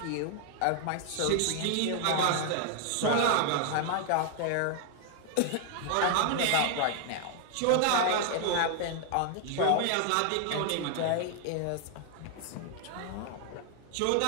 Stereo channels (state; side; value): different; both; correlation 0.00